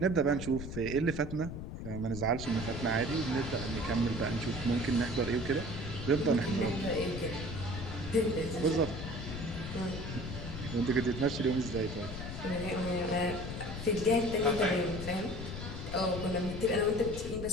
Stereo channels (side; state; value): left; noise; rumble, 7 dB below the sound